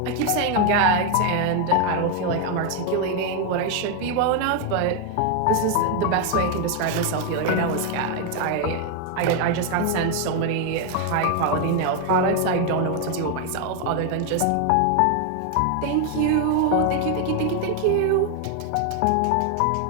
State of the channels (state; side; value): different; both; correlation 0.01